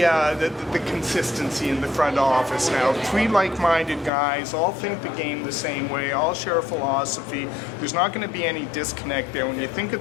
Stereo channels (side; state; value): right; drops out; at 4.1 s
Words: consistency in the front office now. Three like-minded guys, all think the game the same way, all share a philosophy. There's not going to be any disconnect there. When you think